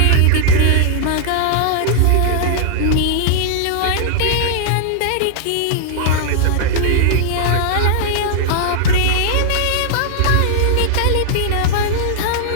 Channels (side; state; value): both; different; correlation -0.01